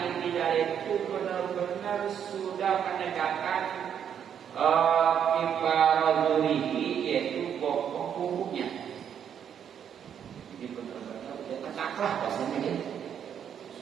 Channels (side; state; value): left; quieter; 8.6 dB